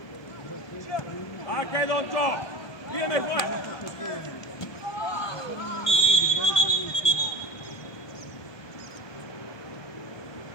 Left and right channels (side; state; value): right; late; 1.2 ms